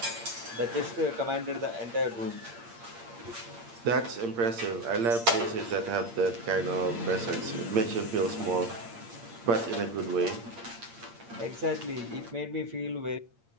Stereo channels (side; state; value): left; late; 8.7 ms